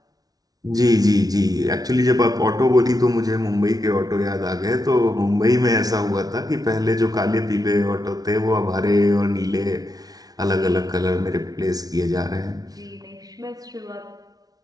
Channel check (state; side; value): late; left; 0.18 ms